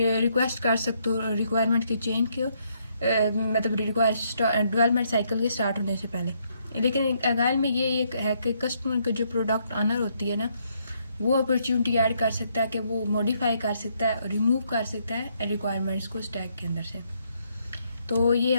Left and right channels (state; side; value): inverted; both; correlation -0.73